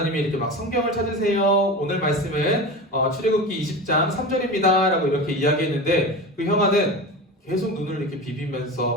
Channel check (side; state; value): both; normal; correlation 0.28